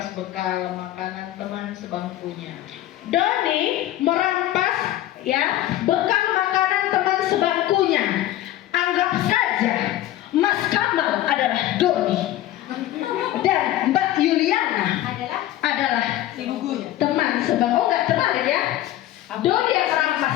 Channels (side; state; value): right; quieter; 14.1 dB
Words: bekal makanan teman sebangkunya. Doni merampas ya bekal makanan teman sebangkunya. Anggap saja Mas Kamal adalah Doni dan Mbak Yuliana adalah teman sebangku. Oh, nggak terbalik ya? Doni yang merampas